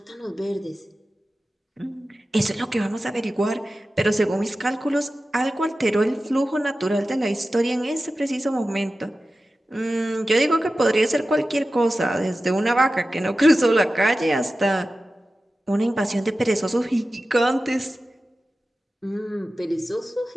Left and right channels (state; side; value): normal; both; correlation 0.94